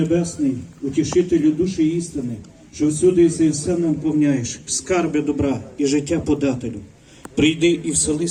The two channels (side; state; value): both; identical; correlation 1.00